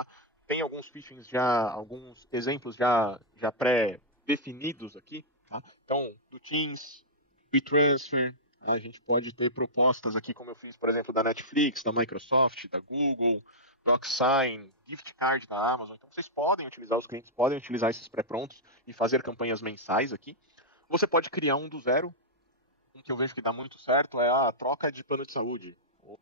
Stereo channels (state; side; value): normal; both; correlation -0.11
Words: Tem alguns phishings alguns exemplos já pré-definidos aqui. Tá? Então, do Teams, WeTransfer, a gente pode ter propostas aqui, como eu fiz, por exemplo, da Netflix, da Microsoft, da Google, DocSign, Gift Card da Amazon. Então, os clientes podem utilizar esses pré-prontos e fazer campanhas mensais aqui. Você pode criar um do zero. Um que eu vejo que dá muito certo é a troca de plano de saúde.